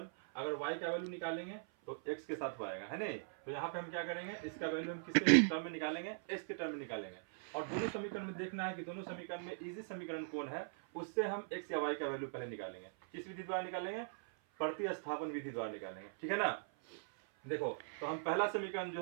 अगर y का वैल्यू निकालेंगे तो x के साथ वो आएगा, है नहीं। तो यहाँ पे हम क्या करेंगे, इसका वैल्यू हम किसके टर्म में निकालेंगे? x के टर्म में निकालेंगे। और दोनों समीकरण में देखना है कि दोनों समीकरण में इजी समीकरण कौन है, उससे हम x या y का वैल्यू पहले निकालेंगे। किस विधि द्वारा निकालेंगे? प्रतिस्थापन विधि द्वारा निकालेंगे, ठीक है ना। देखो तो हम पहला समीकरण जो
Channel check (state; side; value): silent; left; 51 dB below the other